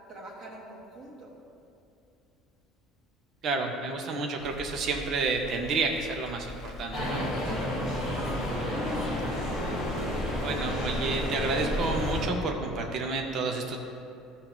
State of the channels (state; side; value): normal; both; correlation 0.50